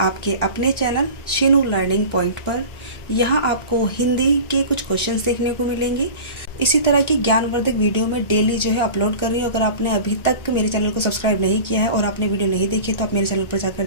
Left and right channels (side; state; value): right; late; 1.3 ms